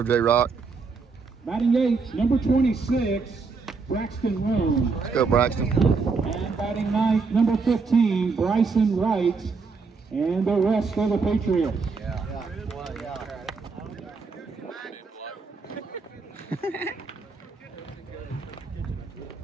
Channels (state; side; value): quieter; left; 4.6 dB